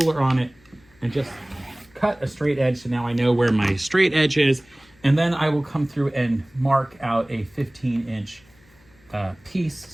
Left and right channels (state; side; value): noise; left; hum, 30 dB below the sound